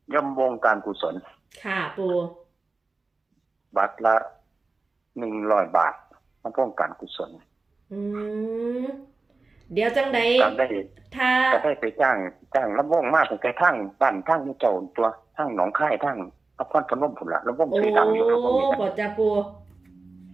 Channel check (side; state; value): left; quieter; 3.6 dB